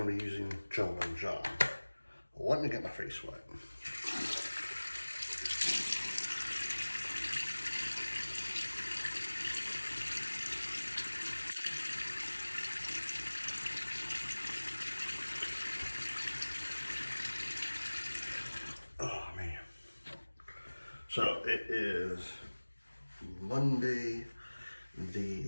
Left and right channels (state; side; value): inverted; both; correlation -1.00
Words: to be using Gentleman John. Let me get my face wet. Oh man. So it is Monday